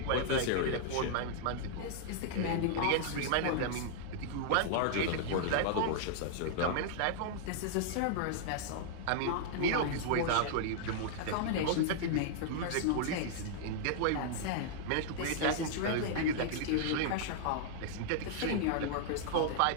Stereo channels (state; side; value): different; both; correlation -0.01